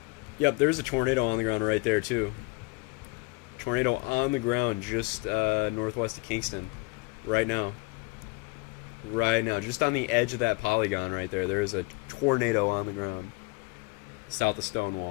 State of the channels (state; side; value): quieter; right; 26.1 dB